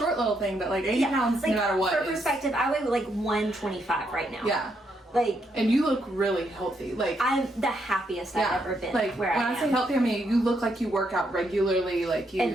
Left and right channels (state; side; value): normal; both; correlation 0.77